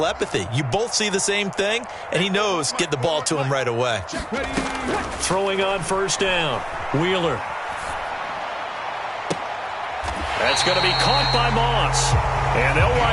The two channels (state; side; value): identical; both; correlation 1.00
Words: You both see the same thing, and he knows get the ball to him right away. Throwing on first down, Wheeler. That's going to be caught by Moss. And they'll